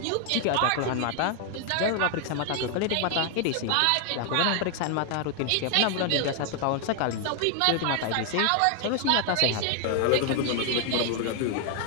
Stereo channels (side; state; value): both; different; correlation 0.00